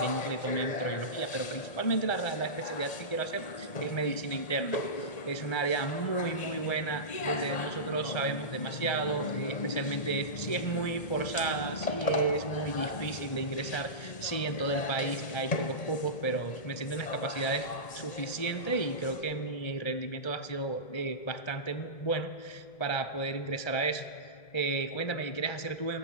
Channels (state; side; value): late; right; 1.8 ms